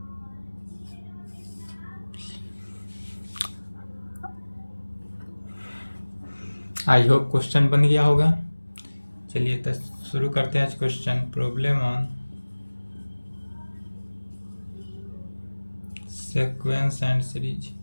I hope question बन गया होगा। चलिए तो शुरू करते हैं आज question. Problem on sequence and series.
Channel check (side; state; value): both; inverted; correlation -1.00